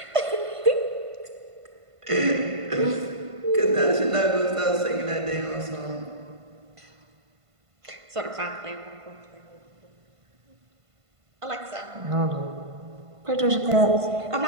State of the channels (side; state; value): left; late; 1.5 ms